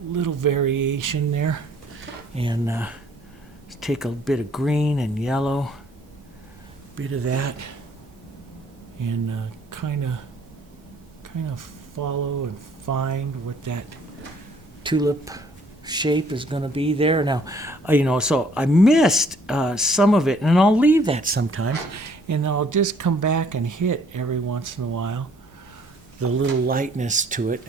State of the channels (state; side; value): normal; both; correlation 0.61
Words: little variation there. And let's take a bit of green and yellow, bit of that, and kind of follow and find what that tulip shape is going to be there. Now, so I missed some of it, and I'll leave that sometimes, and I'll just come back and hit every once in a while the little lightness to it